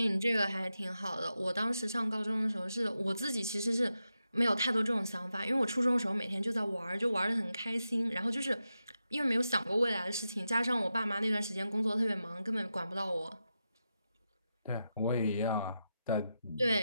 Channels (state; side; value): inverted; both; correlation -0.89